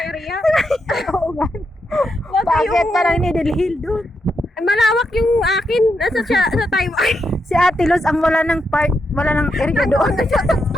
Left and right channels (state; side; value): normal; both; correlation 0.83